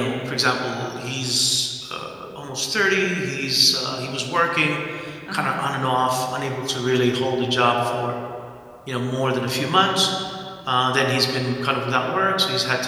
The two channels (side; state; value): both; identical; correlation 1.00